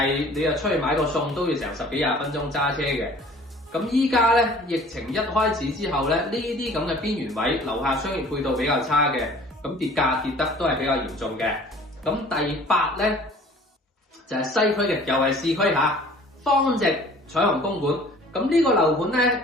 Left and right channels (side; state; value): both; normal; correlation 0.50